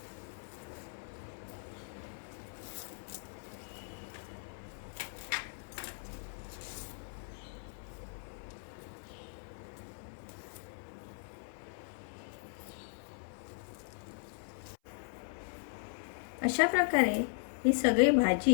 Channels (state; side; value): silent; right; 52 dB below the other